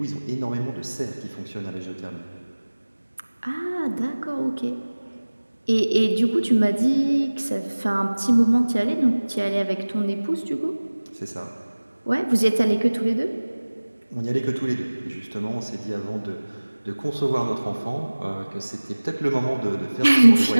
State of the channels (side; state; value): both; inverted; correlation -1.00